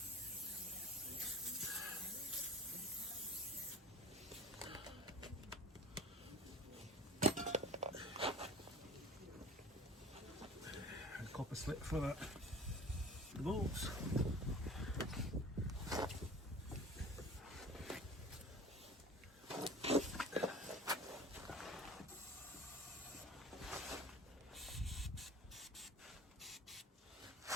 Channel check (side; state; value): both; normal; correlation 0.39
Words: clip for the bolts.